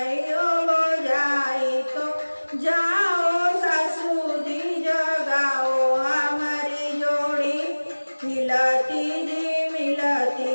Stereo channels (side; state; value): both; inverted; correlation -1.00